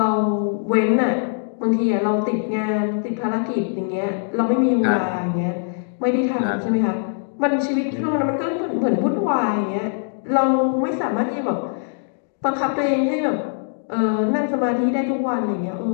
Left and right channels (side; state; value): right; silent; digital silence